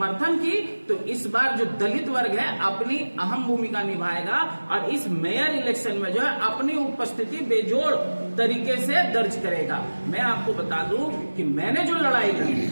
की, तो इस बार जो दलित वर्ग है अपनी अहम भूमिका निभाएगा और इस मेयर इलेक्शन में जो है अपनी उपस्थिति बेजोड़ तरीके से दर्ज करेगा। मैं आपको बता दूं कि मैंने जो लड़ाई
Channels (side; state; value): both; inverted; correlation -1.00